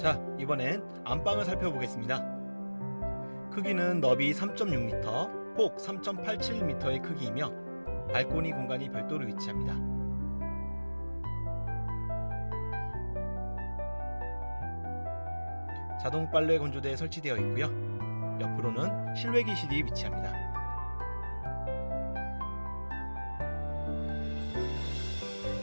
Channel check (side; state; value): both; inverted; correlation -1.00